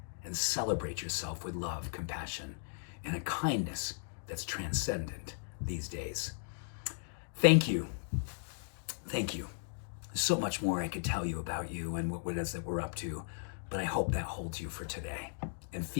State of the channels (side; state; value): right; silent; digital silence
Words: and celebrate yourself with love, compassion, and a kindness that's transcendent these days. Thank you. Thank you. There's so much more I could tell you about you and what it is that we're up to, but I hope that holds you for today and